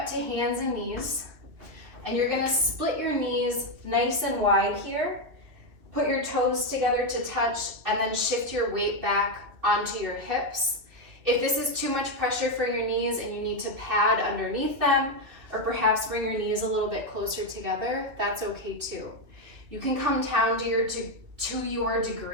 to hands and knees, and you're gonna split your knees nice and wide here. Put your toes together to touch and then shift your weight back onto your hips. If this is too much pressure for your knees and you need to pad underneath them, or perhaps bring your knees a little bit closer together, that's okay too. You can come down to your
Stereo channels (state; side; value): late; left; 2.9 ms